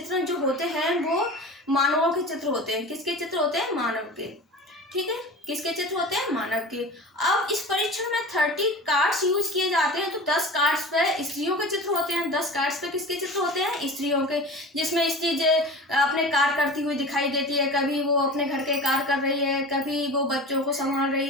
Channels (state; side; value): normal; both; correlation 0.34